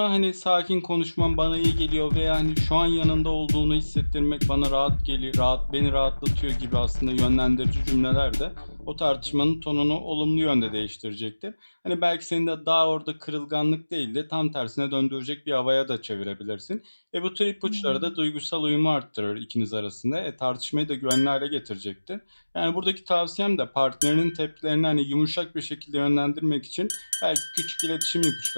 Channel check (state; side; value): inverted; both; correlation -1.00